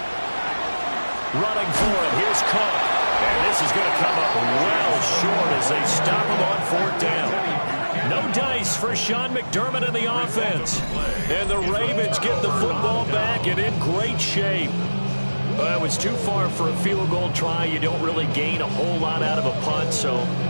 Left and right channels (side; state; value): both; inverted; correlation -1.00